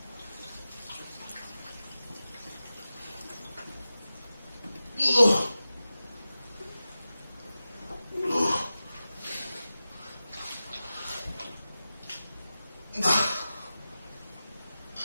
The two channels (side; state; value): both; inverted; correlation -0.94